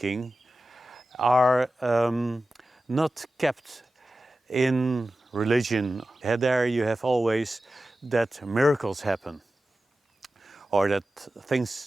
are not kept in religion. There you have always that miracles happen, or that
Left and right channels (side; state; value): both; normal; correlation 0.95